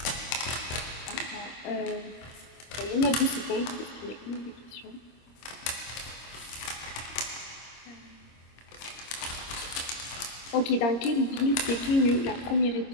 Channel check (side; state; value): right; late; 25 ms